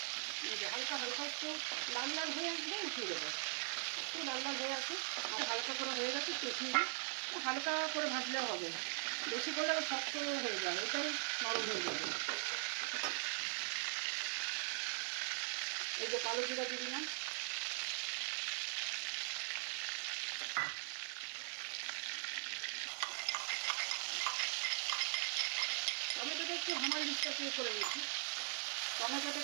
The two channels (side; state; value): left; silent; 50 dB below the other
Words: হালকা হালকা একটু লাল লাল হয়ে আসবে, উঠিয়ে দেবো। একটু লাল লাল হয়ে আসে, হালকা করে হয়ে গেছে, একটু উঠিয়ে দিই। হালকা করে ভাজলে হবে, বেশি করে শক্ত হয়ে যাবে, এরপরে নরম হয়ে যাবে। এই যে কালো জিরা দিয়ে দিলাম, টমেটোটা একটু হামাল ডিস্টার্ব করে নিয়েছি। টমেটোটা